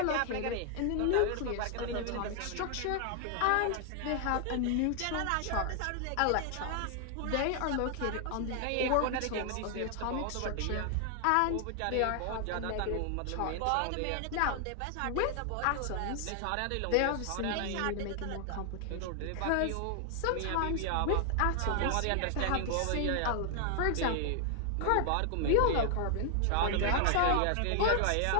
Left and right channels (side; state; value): both; different; correlation 0.00